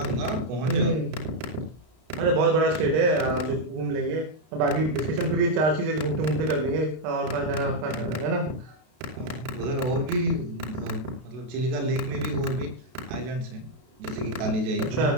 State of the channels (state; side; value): late; left; 32 ms